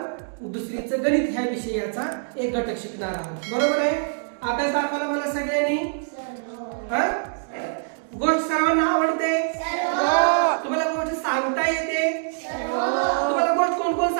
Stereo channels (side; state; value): left; silent; digital silence